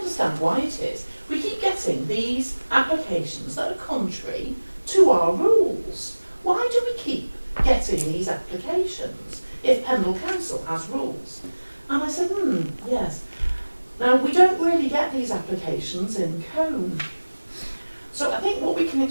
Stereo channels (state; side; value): inverted; both; correlation -1.00